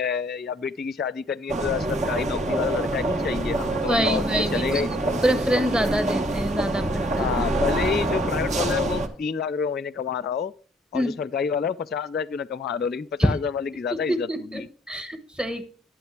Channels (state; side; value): normal; both; correlation 0.62